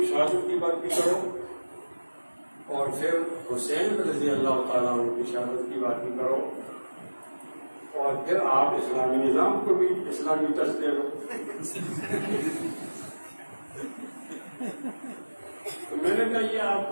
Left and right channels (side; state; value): both; inverted; correlation -1.00